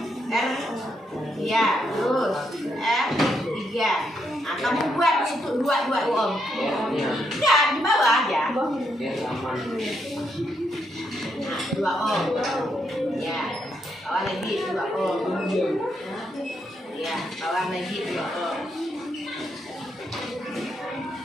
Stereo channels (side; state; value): both; normal; correlation 0.78